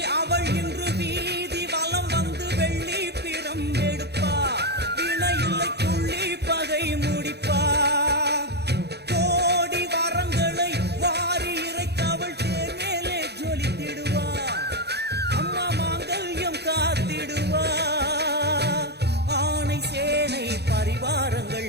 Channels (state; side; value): late; left; 0.48 ms